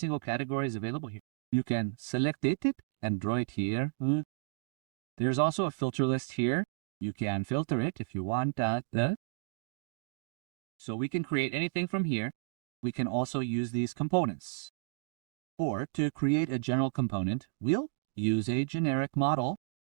category is available here. You can select it and draw it here. There's also a filter list here. You can filter it if you want that. So we can create anything from here. We can also use these components. Or to create a general component, we'll use a generic model.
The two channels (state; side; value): silent; left; digital silence